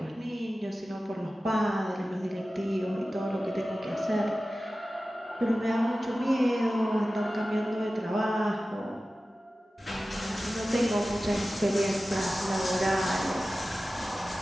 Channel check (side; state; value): both; normal; correlation 0.95